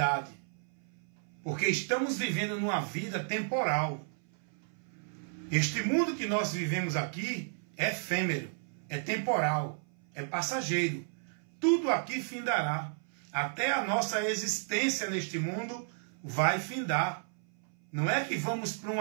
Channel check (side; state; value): left; silent; 56 dB below the other